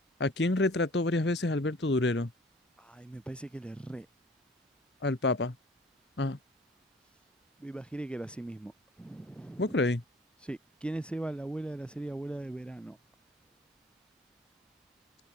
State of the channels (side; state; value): both; normal; correlation 0.50